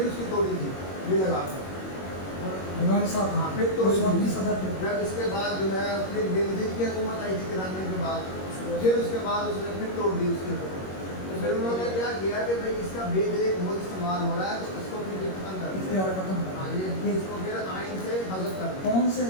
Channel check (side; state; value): right; late; 21 ms